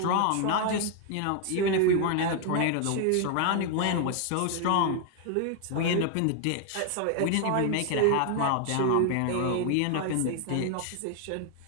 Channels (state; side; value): different; both; correlation 0.00